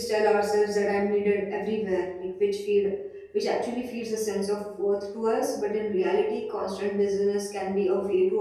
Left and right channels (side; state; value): both; identical; correlation 1.00